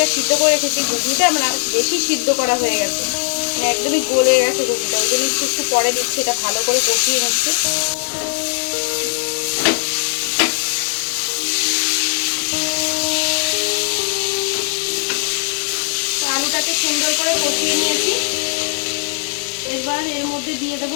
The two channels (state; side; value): silent; right; 55 dB below the other